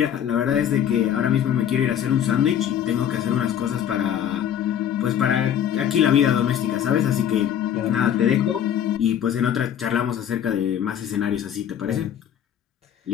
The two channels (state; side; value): quieter; right; 9.7 dB